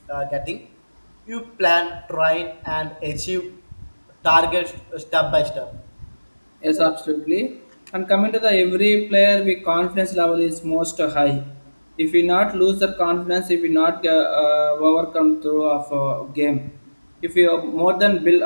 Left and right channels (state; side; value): inverted; both; correlation -1.00